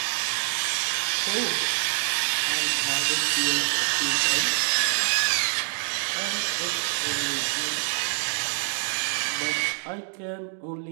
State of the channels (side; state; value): left; silent; digital silence